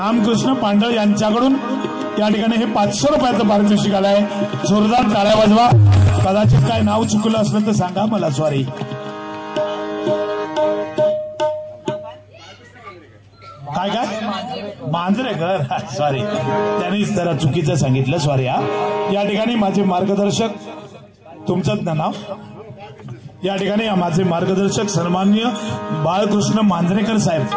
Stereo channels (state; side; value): identical; both; correlation 1.00